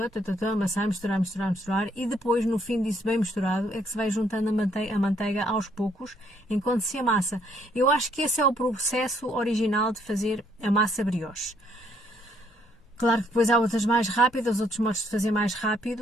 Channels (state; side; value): normal; both; correlation 0.68